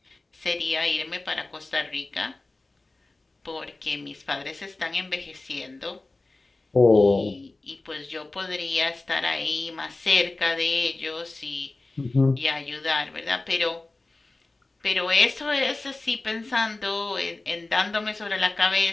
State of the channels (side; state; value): right; quieter; 3.2 dB